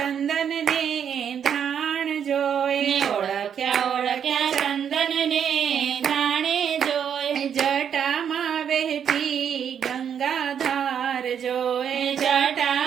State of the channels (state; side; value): quieter; left; 8.2 dB